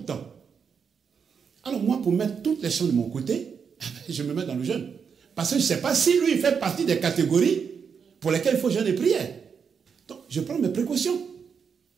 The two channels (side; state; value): left; quieter; 6.5 dB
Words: temps. Alors moi, pour mettre toutes les choses de mon côté, je me mets dans le jeûne. Parce que je ne sais pas si lui, il fait partie des catégories pour lesquelles il faut jeûner et prière. Donc, je prends mes précautions